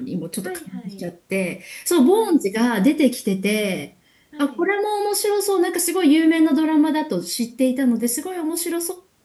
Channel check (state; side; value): identical; both; correlation 1.00